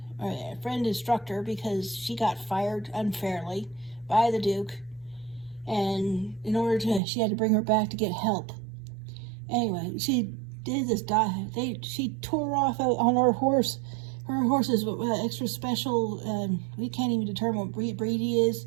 instructor because she got fired unfairly by the Duke, and she had to bring her back to get help. Anyway, she did this. She tore off on her horse. Her horse is extra special. We can't even determine what breed he is,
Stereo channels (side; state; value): left; drops out; at 7.0 s